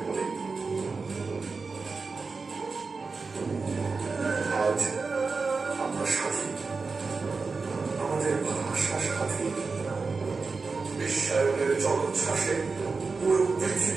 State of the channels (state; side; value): quieter; left; 4.4 dB